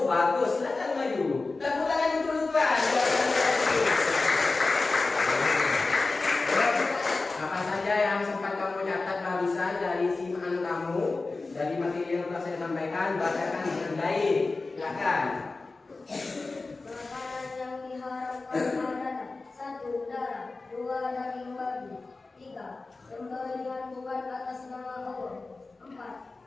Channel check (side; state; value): right; quieter; 3.6 dB